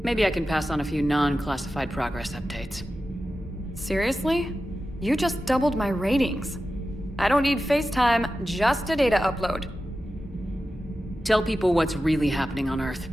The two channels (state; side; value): normal; both; correlation 0.93